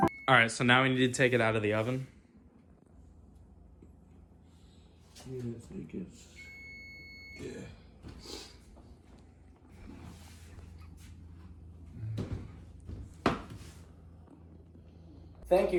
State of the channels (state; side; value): identical; both; correlation 1.00